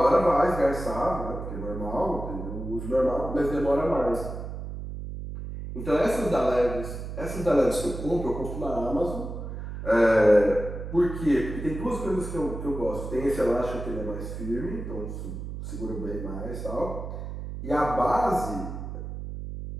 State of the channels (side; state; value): right; noise; hum, 7 dB below the sound